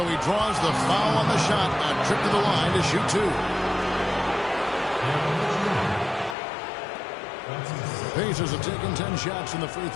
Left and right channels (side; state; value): right; drops out; at 6.4 s